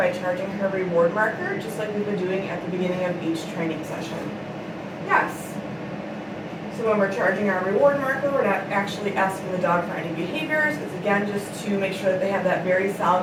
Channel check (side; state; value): both; identical; correlation 1.00